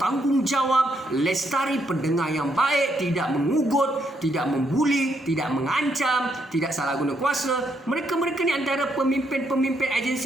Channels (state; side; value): normal; both; correlation 0.76